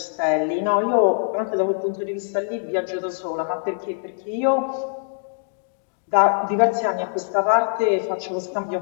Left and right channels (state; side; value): silent; right; digital silence